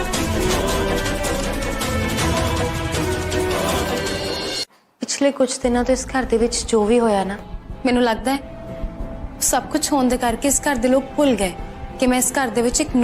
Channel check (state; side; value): identical; both; correlation 1.00